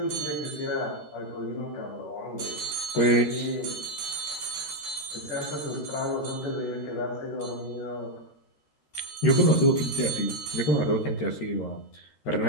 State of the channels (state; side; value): late; right; 13 ms